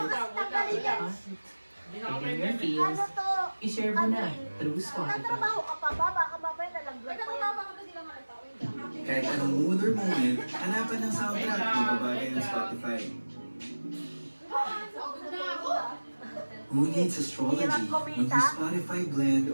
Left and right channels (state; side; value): inverted; both; correlation -1.00